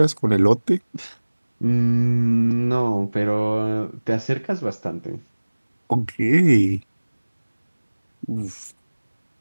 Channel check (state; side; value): inverted; both; correlation -1.00